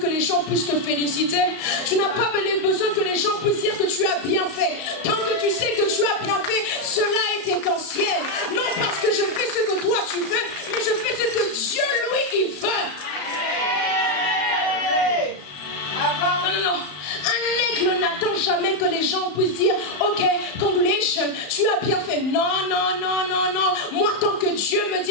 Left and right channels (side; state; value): right; late; 34 ms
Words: les gens puissent te féliciter. Tu n'as pas besoin que les gens puissent dire que tu as bien fait. Tant que tu sais que tu as bien fait, cela est essentiel. Non parce que je fais ce que toi tu veux, mais je fais ce que Dieu lui il veut. Non, non, non. Un aigle n'attend jamais que les gens puissent dire ok, congratulations, tu as bien fait. Non, non, non, non, non. Moi, tant que Dieu me